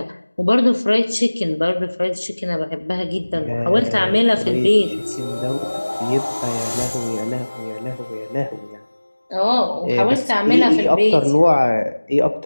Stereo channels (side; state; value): both; inverted; correlation -1.00